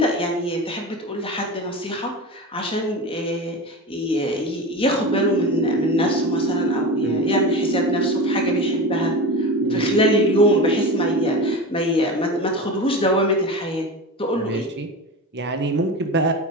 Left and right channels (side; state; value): both; normal; correlation 0.27